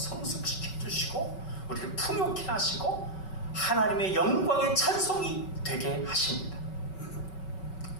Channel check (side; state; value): right; late; 5.3 ms